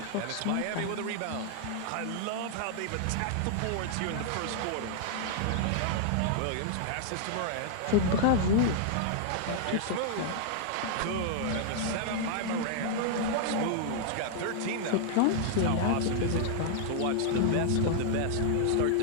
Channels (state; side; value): different; both; correlation -0.01